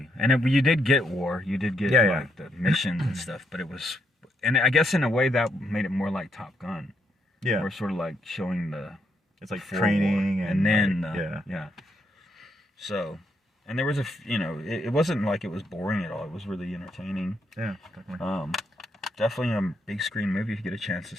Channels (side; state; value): both; normal; correlation 0.77